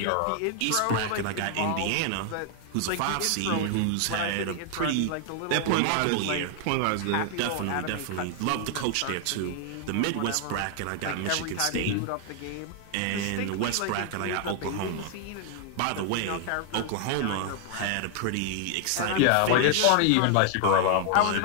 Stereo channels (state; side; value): different; both; correlation 0.00